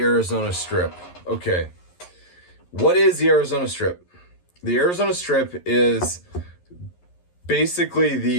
Strip. Okay, what is the Arizona Strip? The Arizona Strip is basically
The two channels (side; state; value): right; late; 11 ms